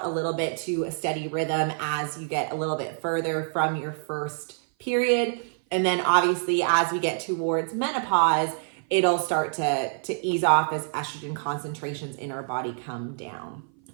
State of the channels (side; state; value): left; silent; 56 dB below the other